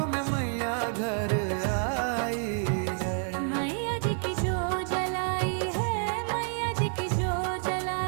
में मैया घर आई है। मैया जी की जो जलाई है, मैया जी की जो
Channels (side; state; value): left; silent; 55 dB below the other